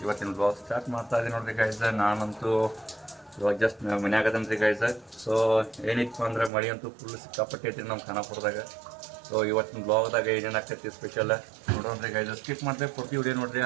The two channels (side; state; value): left; drops out; at 6.5 s